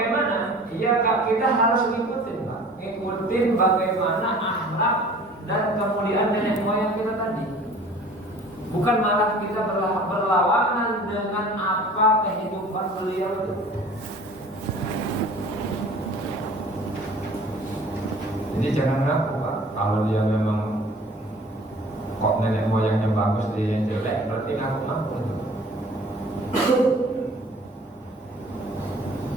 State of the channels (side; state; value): both; normal; correlation 0.47